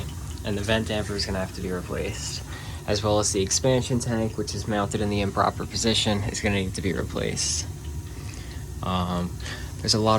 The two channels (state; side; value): identical; both; correlation 1.00